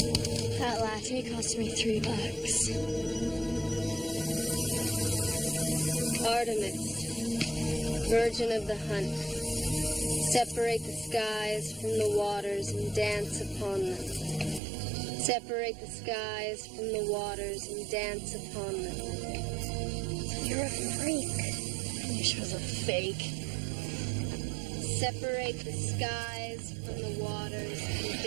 That latte cost me $3. Artemis, virgin of the hunt, separate the skies from the waters and dance upon them. Separate the skies from the waters and dance upon them. You're a freak. I wish it was a fake. Separate the skies from the waters and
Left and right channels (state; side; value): drops out; left; at 14.6 s